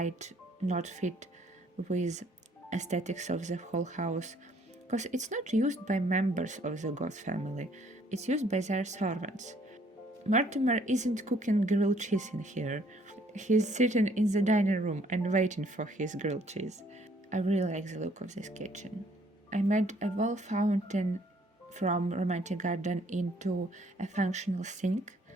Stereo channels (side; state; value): both; normal; correlation 0.63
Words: not fit with aesthetics of the whole house, because it's not used by members of the Goth family, it's used by their servants. Mortimer isn't cooking grilled cheese in here. He's sitting in the dining room and waiting for his grilled cheese. I really like the look of this kitchen. I made a wall fountain from Romantic Garden into a functional sink,